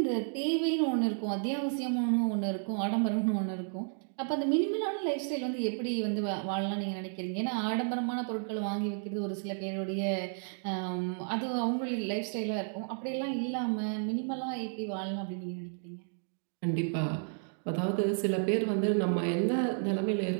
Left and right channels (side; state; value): left; silent; 56 dB below the other